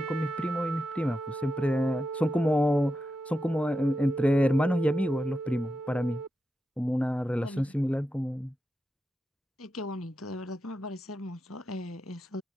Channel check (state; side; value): normal; both; correlation 0.88